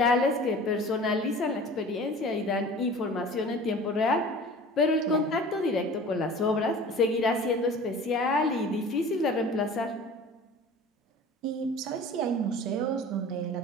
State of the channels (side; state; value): both; normal; correlation 0.42